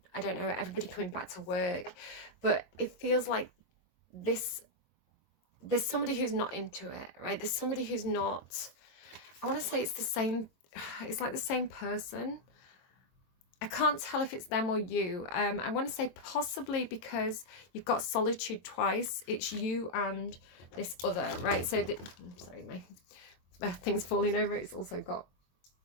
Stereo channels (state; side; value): late; right; 22 ms